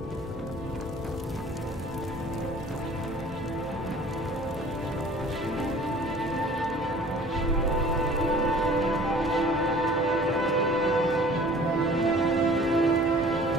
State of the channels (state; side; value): normal; both; correlation 0.49